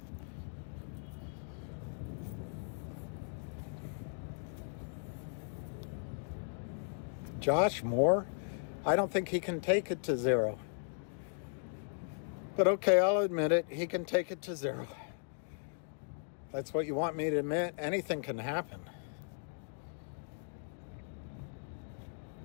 Josh Moore? I don't think he can take it to 0. But okay, I'll admit it. He can take it to 0. That's what you want me to admit. Anything can happen.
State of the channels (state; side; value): silent; right; digital silence